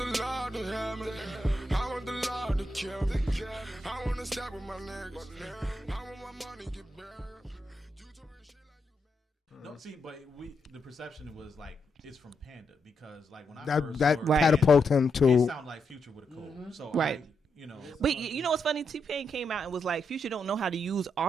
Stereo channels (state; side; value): normal; both; correlation 0.82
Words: Lord to hear me. I want the Lord to kill me. I want to stop with my niggas. I want my money get buried. You talking shit like you mad. no, see, but the perception was like, it's from Panda because like when I That first that heard catapulted him it to. sounded like Future with a cold. So Right. you know. but you know what's funny? T-Pain came out and was like, Future don't know how to use